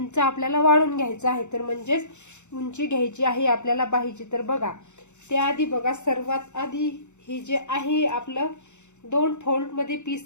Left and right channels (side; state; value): right; late; 0.83 ms